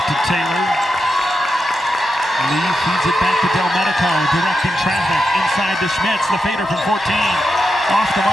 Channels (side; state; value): both; normal; correlation 0.87